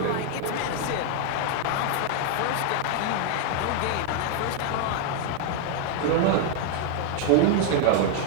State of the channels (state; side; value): different; both; correlation 0.00